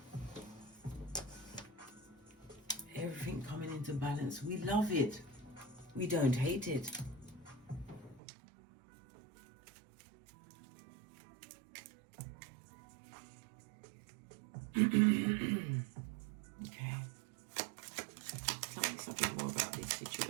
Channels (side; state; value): left; drops out; at 8.2 s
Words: Everything coming into balance. We love it. We don't hate it. Okay. Tell me something more about this